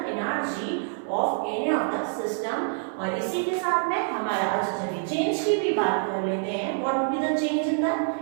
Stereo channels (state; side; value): silent; left; 61 dB below the other